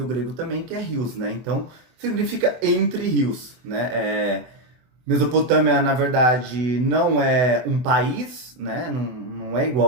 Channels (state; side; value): late; left; 24 ms